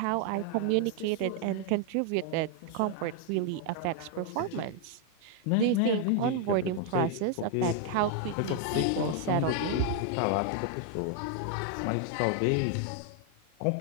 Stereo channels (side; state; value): both; different; correlation 0.00